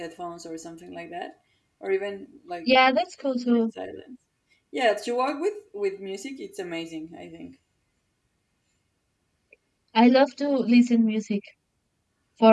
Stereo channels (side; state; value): both; identical; correlation 1.00